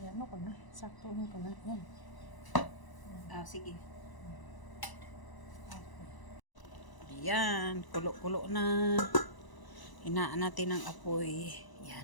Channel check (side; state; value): right; late; 1.0 ms